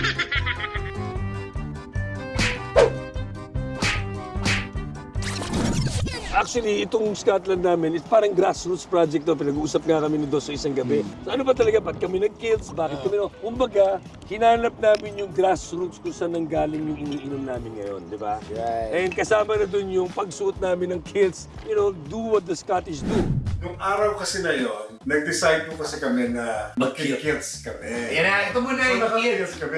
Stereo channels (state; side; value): identical; both; correlation 1.00